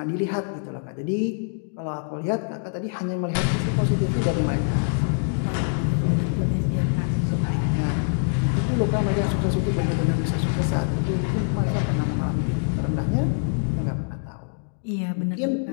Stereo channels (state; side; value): silent; right; 62 dB below the other